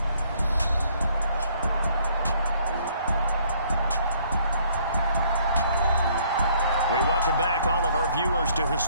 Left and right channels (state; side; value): inverted; both; correlation -0.63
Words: We welcome back all of our viewers to